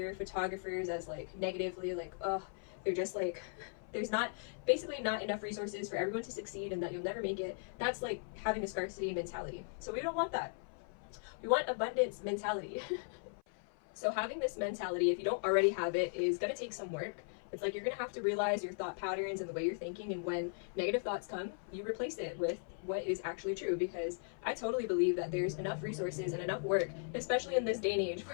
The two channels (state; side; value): silent; right; 53 dB below the other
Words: photographers as like negatively, like, oh, they're just like, there's not enough resources for everyone to succeed, and that you'll never make it. That's like having a scarcity mentality. So we don't want that. We want abundance mentality. So having this mentality, if you don't already have it, is going to take some work. It's like you're going to have to realize your thought patterns and the way you're thinking, and when negative thoughts come, you replace it with what is actually true, because I totally believe that there's enough resources and enough work, especially in this day and age,